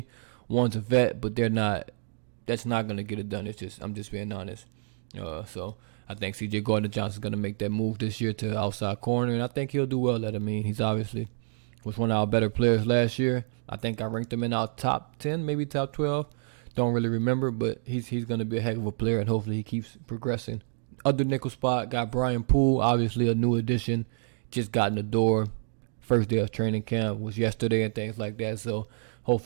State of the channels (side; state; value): left; silent; digital silence